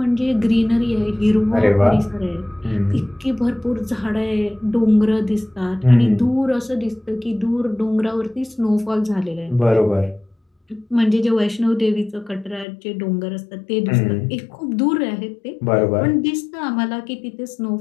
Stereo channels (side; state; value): right; drops out; at 12.7 s